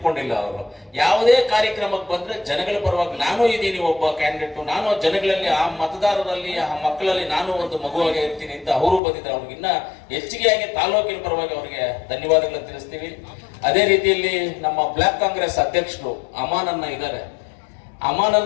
ಅವರು ಯಾವುದೇ ಕಾರ್ಯಕ್ರಮಕ್ಕೆ ಬಂದ್ರೆ ಜನಗಳ ಪರವಾಗಿ ನಾನು ಇದ್ದೀನಿ, ಒಬ್ಬ ಕ್ಯಾಂಡಿಡೇಟ್, ನಾನು ಜನಗಳಲ್ಲಿ, ಆ ಮತದಾರರಲ್ಲಿ, ಆ ಮಕ್ಕಳಲ್ಲಿ ನಾನು ಒಂದು ಮಗುವಾಗಿ ಇರ್ತೀನಿ ಅಂತ ಅವರು ಬಂದಿದ್ದಾರೆ. ಅವ್ರಿಗಿನ್ನ ಹೆಚ್ಚಿಗೆಯಾಗಿ ತಾಲೂಕಿನ ಪರವಾಗಿ ಅವರಿಗೆ ಧನ್ಯವಾದಗಳನ್ನು ತಿಳಿಸ್ತೀವಿ. ಅದೇ ರೀತಿಯಲ್ಲಿ ನಮ್ಮ ಬ್ಲಾಕ್ ಕಾಂಗ್ರೆಸ್ ಅಧ್ಯಕ್ಷರು ಅಮಾನನ್ನ ಇದ್ದಾರೆ.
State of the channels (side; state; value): right; drops out; at 9.0 s